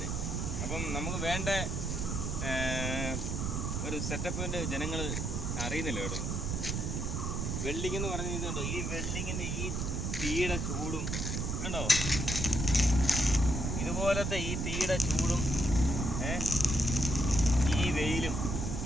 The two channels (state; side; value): noise; right; rumble, 1 dB below the sound